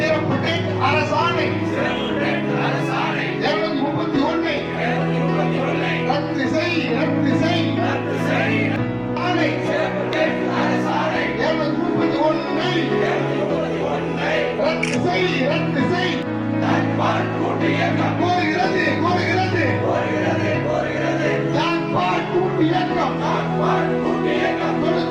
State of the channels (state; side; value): identical; both; correlation 1.00